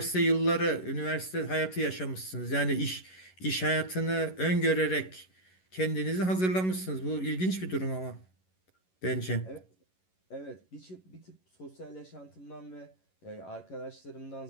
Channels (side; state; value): right; late; 11 ms